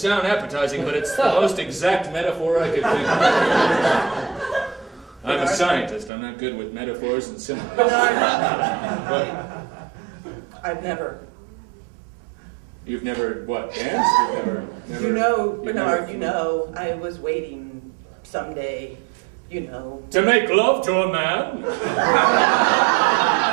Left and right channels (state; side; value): drops out; left; at 6.1 s